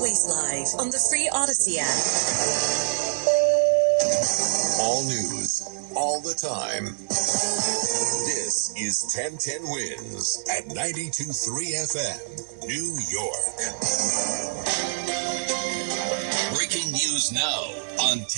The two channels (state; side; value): silent; left; digital silence